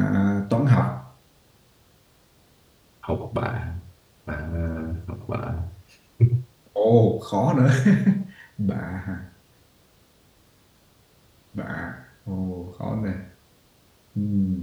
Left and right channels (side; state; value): both; identical; correlation 1.00